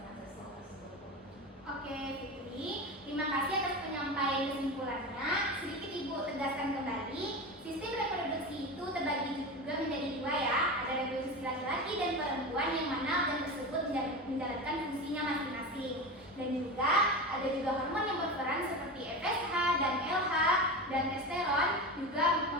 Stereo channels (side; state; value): both; normal; correlation 0.25